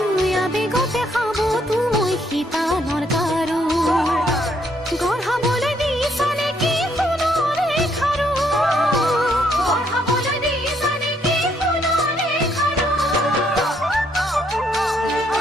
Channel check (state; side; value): normal; both; correlation 0.71